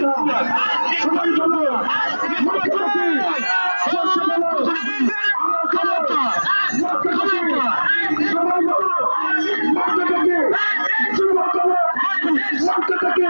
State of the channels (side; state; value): both; inverted; correlation -1.00